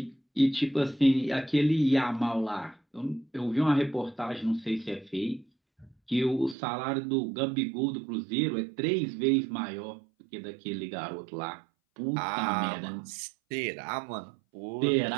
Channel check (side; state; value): left; drops out; at 6.6 s